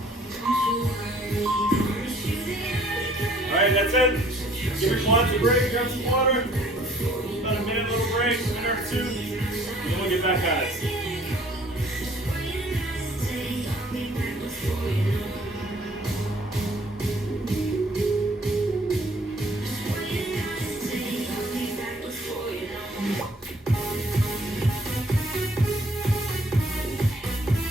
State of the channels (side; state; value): both; normal; correlation 0.58